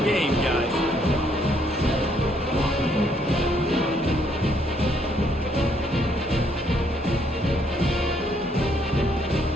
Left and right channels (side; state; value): both; normal; correlation 0.69